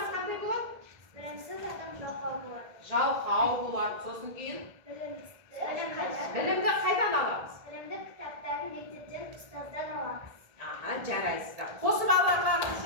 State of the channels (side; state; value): left; late; 1.7 ms